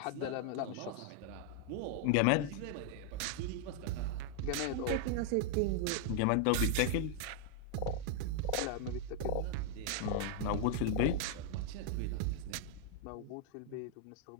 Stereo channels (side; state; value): both; different; correlation 0.00